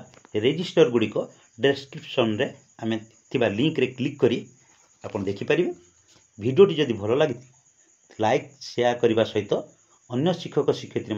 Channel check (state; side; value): identical; both; correlation 1.00